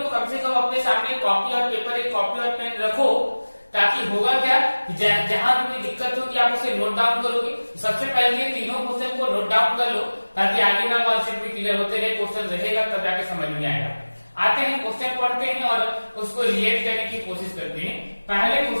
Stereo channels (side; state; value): both; inverted; correlation -1.00